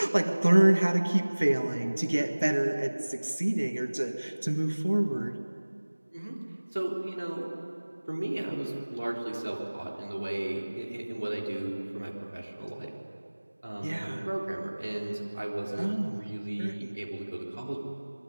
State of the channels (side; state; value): both; inverted; correlation -1.00